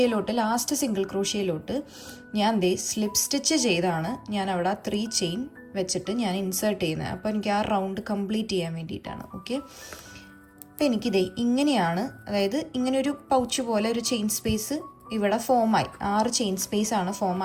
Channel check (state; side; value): identical; both; correlation 1.00